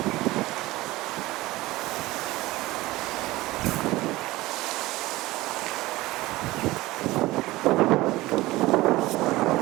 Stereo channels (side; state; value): left; quieter; 18.8 dB